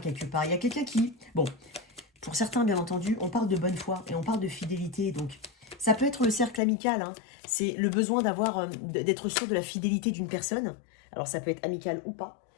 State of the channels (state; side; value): drops out; right; at 6.6 s